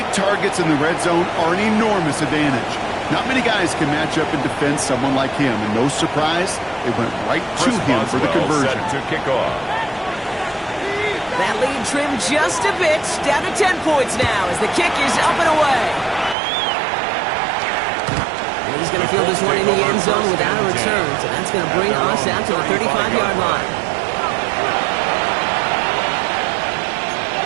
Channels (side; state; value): left; drops out; at 16.4 s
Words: targets in the red zone are an enormous advantage. Not many guys can match up and defend someone like him, and no surprise, it went right to him for the conversion. Set to kick off. That lead trimmed just a bit, down to 10 points now as the kick is up and away. And he's going to field this one in the end zone without a return, so that's going to bring us out to the 35-yard line.